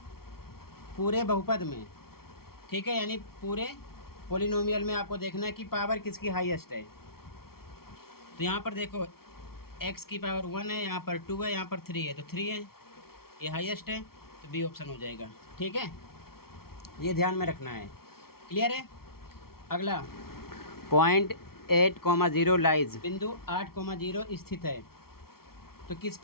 पूरे बहुपद में, ठीक है, यानी पूरे पोलिनोमियल में आपको देखना है कि पावर किसकी हाईएस्ट है। तो यहाँ पर देखो, x की पावर 1 है, यहाँ पर 2 है, यहाँ पर 3 है, तो 3 है, ये हाईएस्ट है, तो बी ऑप्शन हो जाएगा, ठीक है। ये ध्यान में रखना है, क्लियर है। अगला, पॉइंट 8,0 लाइज, बिंदु 8,0 स्थित है। तो किस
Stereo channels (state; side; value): late; right; 0.94 ms